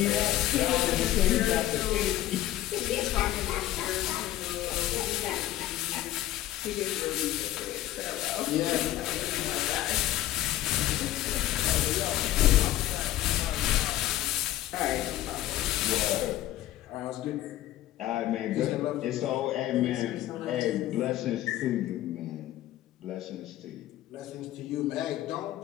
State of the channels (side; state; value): right; quieter; 14.1 dB